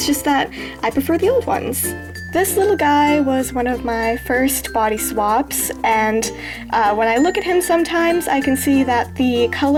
just that I prefer the old ones. This little guy was one of my first body swaps, and when I look at him sometimes I can see that the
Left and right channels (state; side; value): identical; both; correlation 1.00